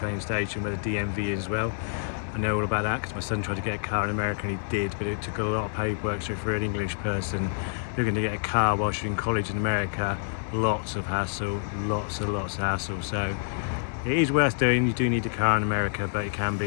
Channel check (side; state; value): right; silent; digital silence